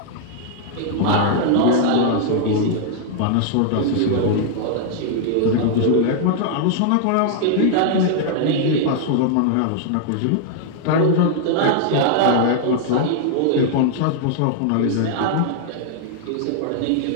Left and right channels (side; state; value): both; different; correlation 0.00